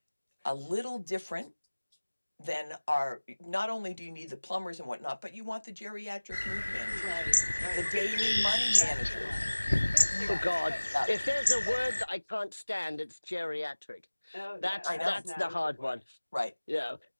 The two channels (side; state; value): both; inverted; correlation -1.00